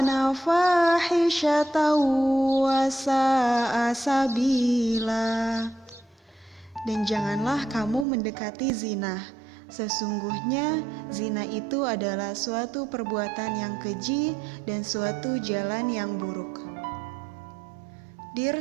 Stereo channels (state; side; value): drops out; left; at 8.1 s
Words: fahisyatan wa sa'a sabila. Dan janganlah kamu mendekati zina. Sesungguhnya zina itu adalah suatu perbuatan yang keji dan suatu jalan yang buruk.